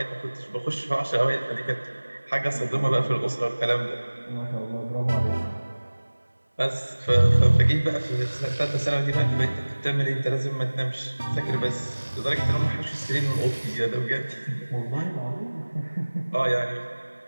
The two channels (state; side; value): inverted; both; correlation -1.00